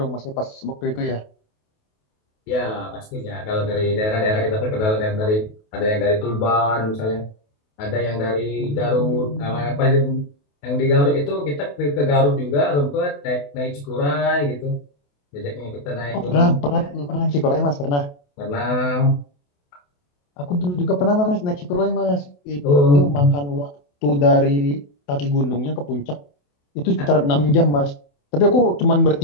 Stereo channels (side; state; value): right; late; 28 ms